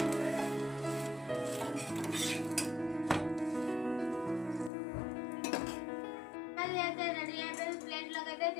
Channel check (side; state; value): right; drops out; at 4.7 s